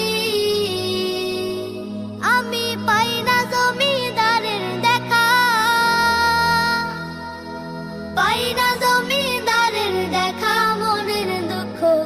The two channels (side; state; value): both; identical; correlation 1.00